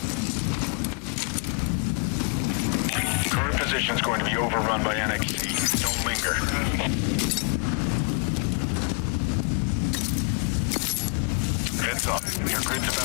Current position is going to be overrun by NXC. Don't linger. Heads up. Your grid's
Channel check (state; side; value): quieter; right; 39.9 dB